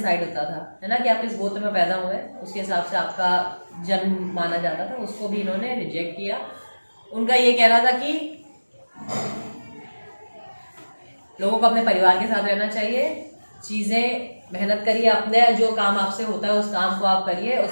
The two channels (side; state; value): both; inverted; correlation -1.00